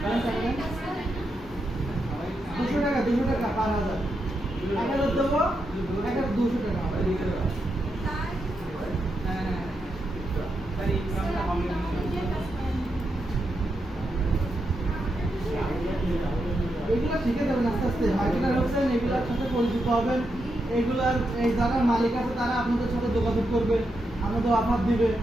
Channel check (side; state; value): both; normal; correlation 0.84